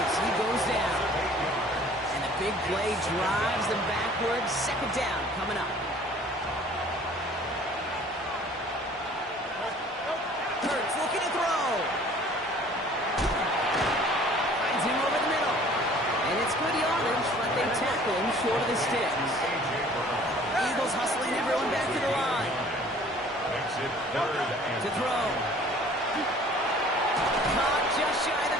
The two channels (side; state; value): both; normal; correlation 0.51